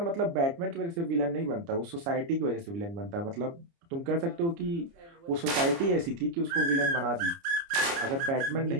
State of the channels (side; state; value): left; late; 29 ms